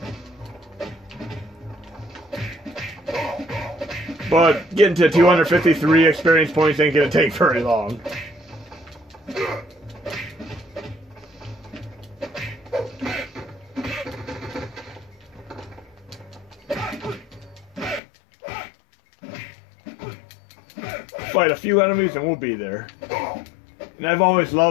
But getting to 253 experience points ain't gonna take very long. Fight a few enemies and we'll be there. And I've always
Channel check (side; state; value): right; drops out; at 18.0 s